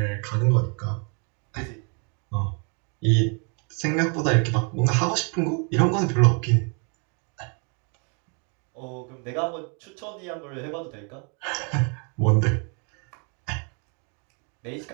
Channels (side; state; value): left; quieter; 37.0 dB